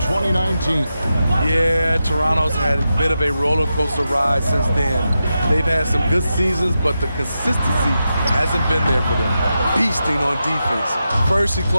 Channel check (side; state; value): both; inverted; correlation -0.89